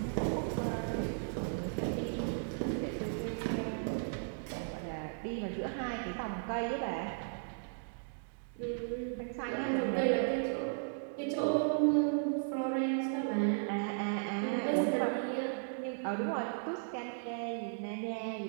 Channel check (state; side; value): silent; left; digital silence